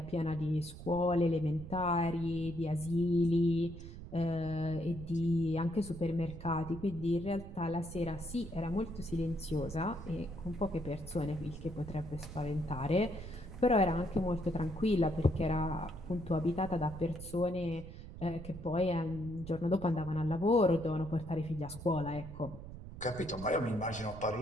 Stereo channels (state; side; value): noise; right; rumble, 12 dB below the sound